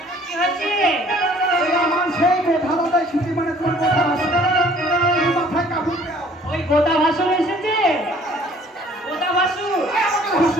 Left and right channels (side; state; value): both; normal; correlation 0.55